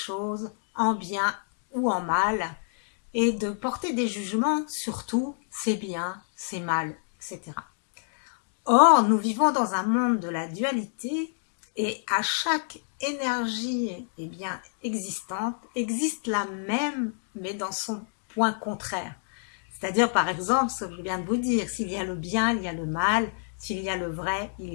en bien ou en mal et de porter des jugements sur tout, c'est bien, c'est mal, etc. Or, nous vivons dans un monde de la dualité et à chaque énergie bien, existante existe la même, mais dans son point contraire. C'est-à-dire, par exemple, ce que je viens de vous dire, s'il y a le bien, il y a le mal, s'il y a le vrai, il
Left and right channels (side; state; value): right; silent; digital silence